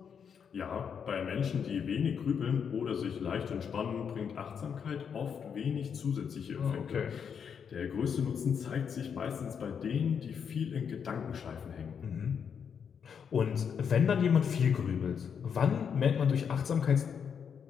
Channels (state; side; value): quieter; right; 7.1 dB